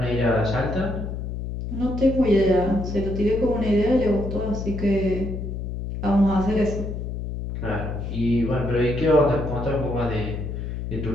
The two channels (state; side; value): noise; left; hum, 5 dB below the sound